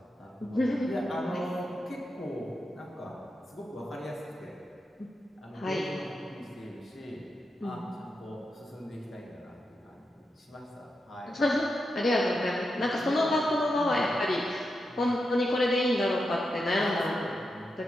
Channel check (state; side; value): normal; both; correlation 0.87